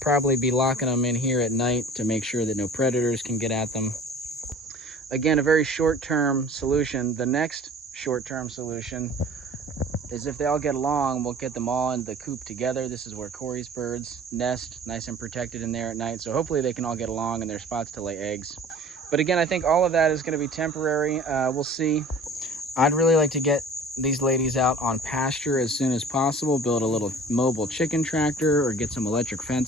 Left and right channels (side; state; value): both; normal; correlation 0.46